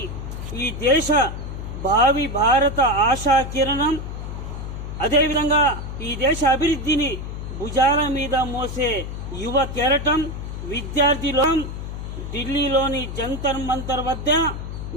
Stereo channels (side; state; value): left; noise; hum, 7 dB below the sound